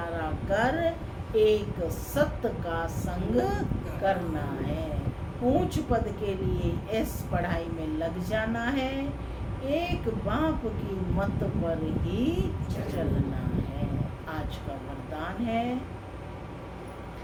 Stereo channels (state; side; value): identical; both; correlation 1.00